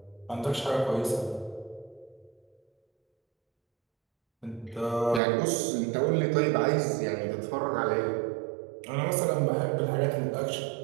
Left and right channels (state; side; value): drops out; left; at 5.2 s